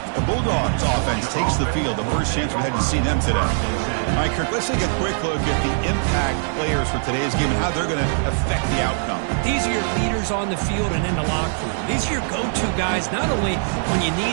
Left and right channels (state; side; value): silent; left; digital silence